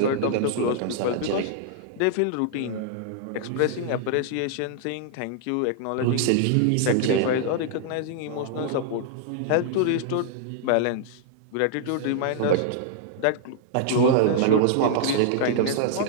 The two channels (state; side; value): different; both; correlation -0.01